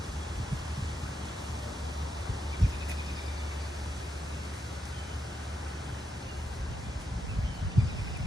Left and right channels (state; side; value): normal; both; correlation 0.83